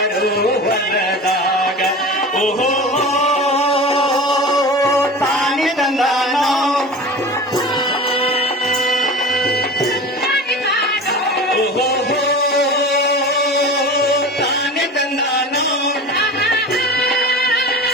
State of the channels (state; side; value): normal; both; correlation 0.33